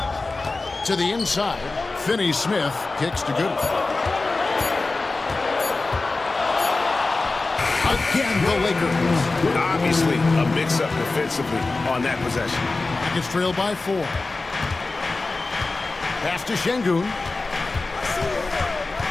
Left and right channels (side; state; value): right; quieter; 3.5 dB